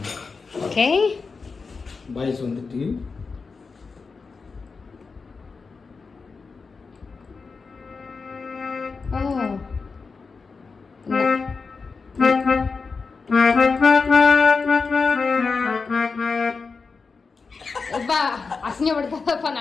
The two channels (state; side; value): quieter; right; 4.7 dB